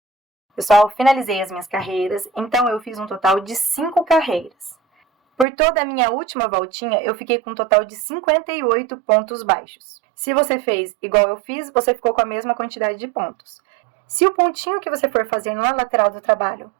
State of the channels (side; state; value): left; drops out; at 5.5 s